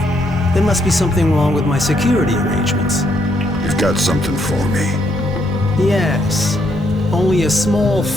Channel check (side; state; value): both; normal; correlation 0.74